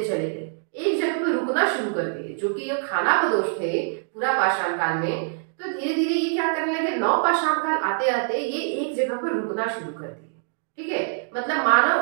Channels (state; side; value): silent; left; digital silence